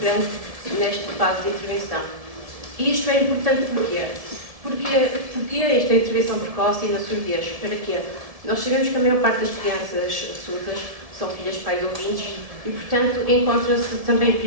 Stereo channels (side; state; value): left; late; 1.7 ms